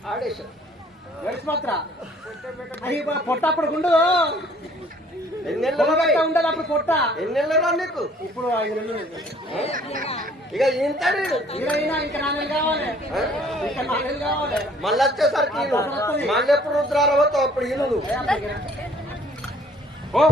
ఆడేశారు గడిచి మాత్ర అది పొట్టప్పుడు గుండు ఎన్నెళ్ళు ఉండదు అప్పుడు పొట్ట ఎన్నెళ్ళు రా నీకు ఇప్పుడు 5 నెలలు ఇక ఇంతడు ఇరవైనా ఇంకా 4 నెలలు కావాలి ఇంకా 4 నెలలు కావాలి మళ్ళీ వచ్చేసరికి ఈను. మళ్ళీ ఎప్పుడు రుద్రారవతో అప్పుడు ఈను నువ్వు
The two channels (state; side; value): normal; both; correlation 0.57